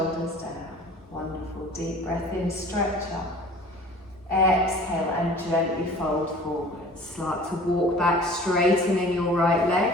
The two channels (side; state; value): both; normal; correlation 0.45